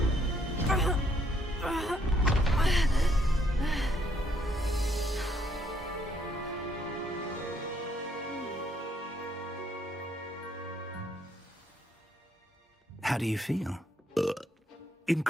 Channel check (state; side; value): normal; both; correlation 0.70